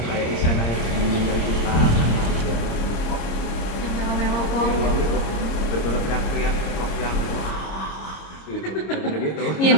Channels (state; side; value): late; right; 26 ms